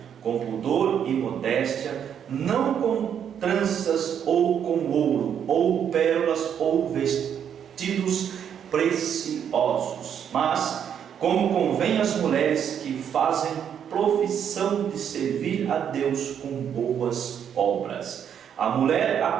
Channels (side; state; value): left; quieter; 8.6 dB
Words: com pudor e modéstia, não com tranças ou com ouro, ou pérolas, ou vestidos preciosos, mas como convém às mulheres que fazem profissão de servir a Deus com boas obras. A mulher